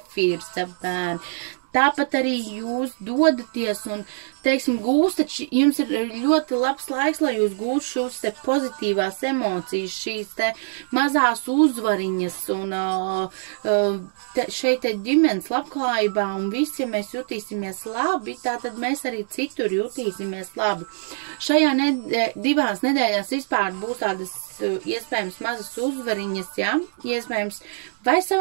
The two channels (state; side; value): silent; left; digital silence